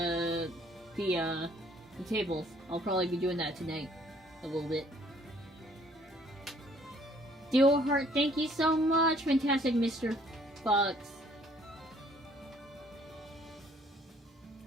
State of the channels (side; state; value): both; normal; correlation 0.61